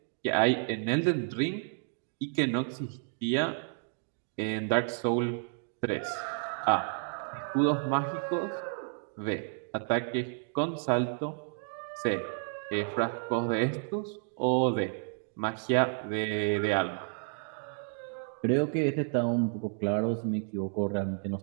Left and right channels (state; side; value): silent; left; 57 dB below the other